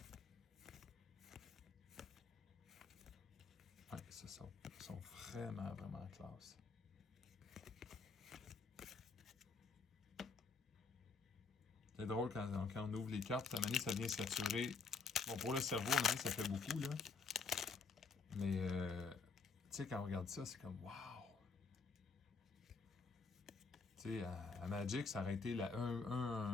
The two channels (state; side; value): quieter; right; 4.7 dB